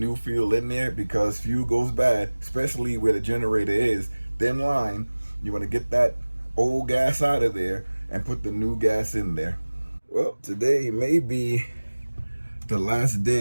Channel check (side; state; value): both; inverted; correlation -1.00